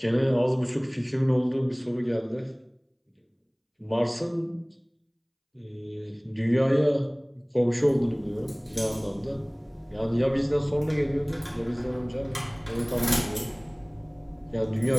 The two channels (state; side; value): identical; both; correlation 1.00